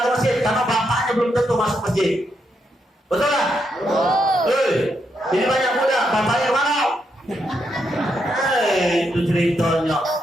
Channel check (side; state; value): both; normal; correlation 0.80